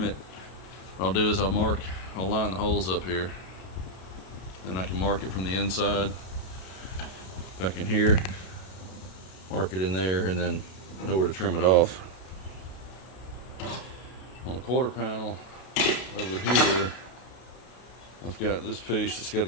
it. What I'll do is I'll line the holes up here, and I can mark it from the inside back in here, mark it in there, and then know where to trim it off. On the quarter panel over here, I've got this piece that's got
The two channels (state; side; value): late; right; 32 ms